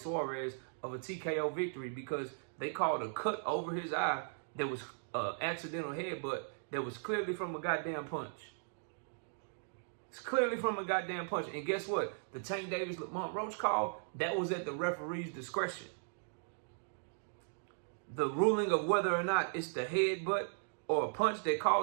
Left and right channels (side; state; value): left; silent; digital silence